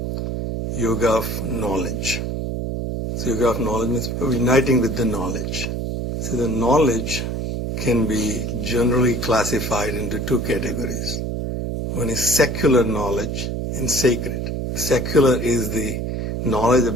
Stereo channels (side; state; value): right; noise; hum, 3 dB below the sound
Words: Yoga of Knowledge. So Yoga of Knowledge means uniting with the knowledge. So the knowledge can be generally classified into 2 categories. One is secular knowledge and sacred. Secular is the knowledge